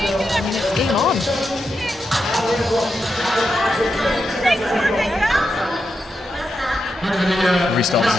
I mean, it's game on. Restart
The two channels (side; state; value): both; normal; correlation 0.86